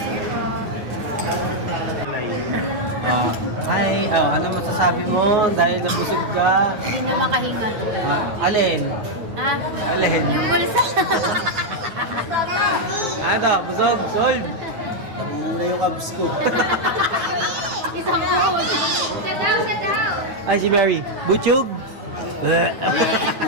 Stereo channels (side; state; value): left; late; 9.2 ms